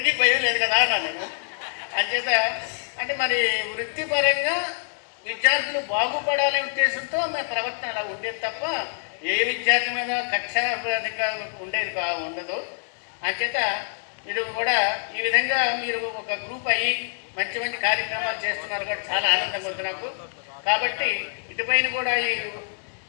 భయం లేదు కదా అన్నాను. అంచేత అంటే మరి వృత్తిపరంగా విద్యార్థులు బాగుపడాలనే ఉద్దేశంతో మా ప్రవర్తన అలా ఉండేది తప్ప ఏ విద్యార్థి మీద కక్షాధికంగా ఉండేది ఉండదు. అంచేత మీరు కూడా ఈ విధంగా మీరు ఒక గ్రూప్ అయ్యి మంచి మంచి కార్యక్రమాలు చేస్తున్నారు కూడా చాలా ఆనందంగా ఉంది నాకు. కాబట్టి ఇటుపైన కూడా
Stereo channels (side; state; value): right; silent; digital silence